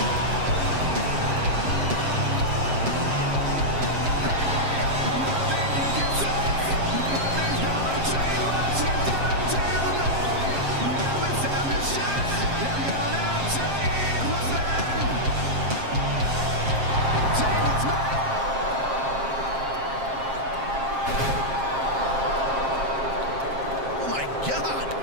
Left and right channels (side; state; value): left; late; 7.5 ms